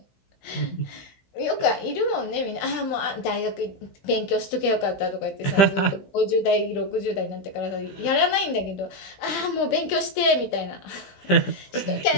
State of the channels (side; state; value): right; late; 16 ms